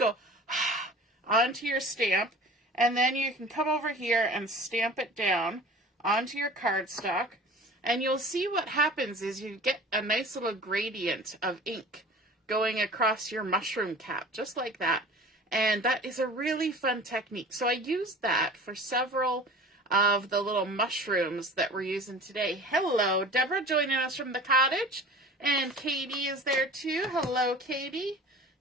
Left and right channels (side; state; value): both; normal; correlation 0.41